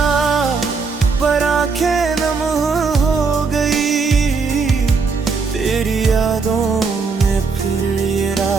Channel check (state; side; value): quieter; left; 4.7 dB